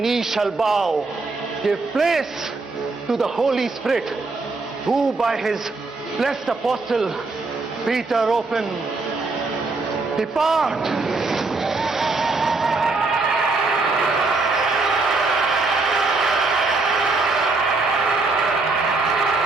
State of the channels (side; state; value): left; quieter; 3.7 dB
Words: shall bow. Give place to the Holy Spirit, who by his blessed apostle Peter opened. Depart.